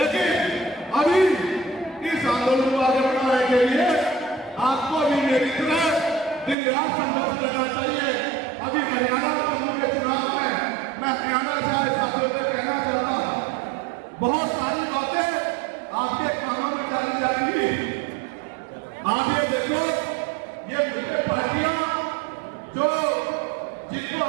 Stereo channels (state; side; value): drops out; left; at 6.6 s